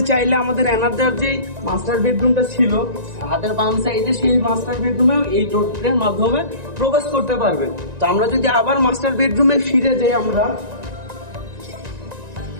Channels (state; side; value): late; left; 1.9 ms